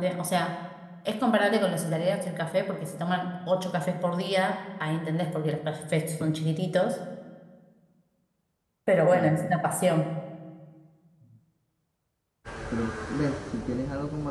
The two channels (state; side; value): identical; both; correlation 1.00